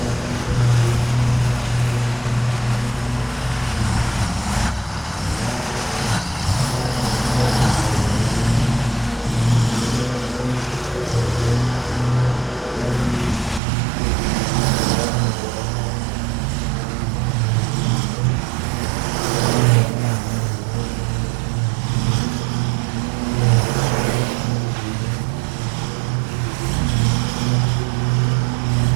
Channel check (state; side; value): drops out; left; at 13.6 s